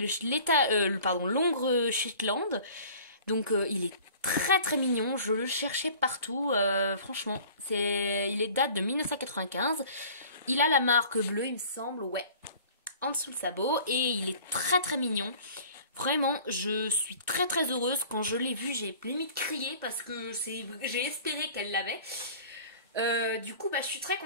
l'Hongre Shetland. Donc il est très très mignon, je le cherchais partout, franchement. Il est date de 1995. Il a la marque bleue, il me semble, ouais, en dessous le sabot, et il est très très mignon. Vraiment, je suis très très heureuse. Quand je l'ai vu, j'ai limite crié, parce que j'ai espéré qu'elle l'avait. Du coup je suis très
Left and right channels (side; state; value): both; inverted; correlation -0.47